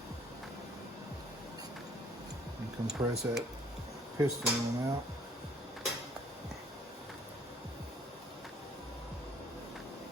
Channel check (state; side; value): normal; both; correlation 0.60